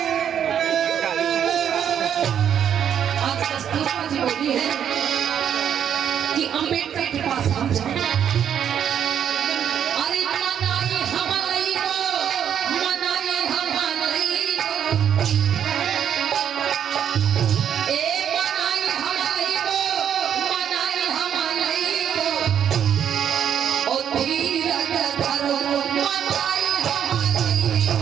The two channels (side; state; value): left; quieter; 9.0 dB